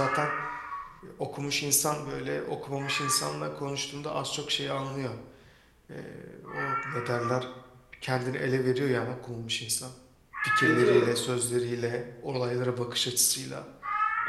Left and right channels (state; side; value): identical; both; correlation 1.00